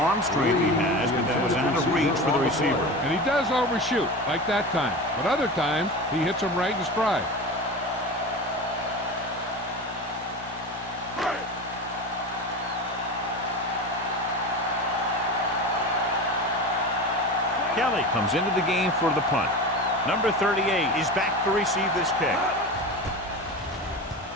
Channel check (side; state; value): both; normal; correlation 0.28